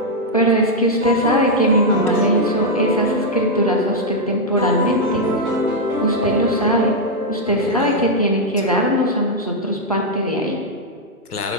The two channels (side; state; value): both; normal; correlation -0.01